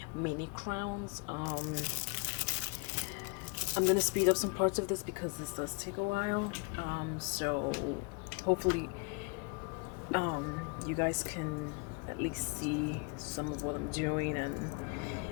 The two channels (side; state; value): right; quieter; 32.3 dB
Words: mini crowns. I'm gonna speed up some parts of this because this does take a while. So hopefully you guys can at least see some of what I'm doing and